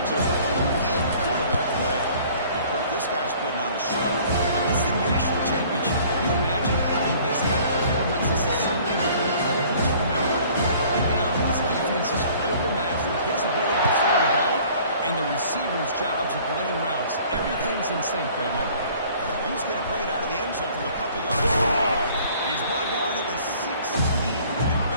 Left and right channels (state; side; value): inverted; both; correlation -0.53